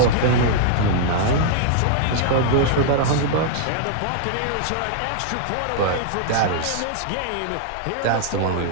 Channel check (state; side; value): different; both; correlation -0.01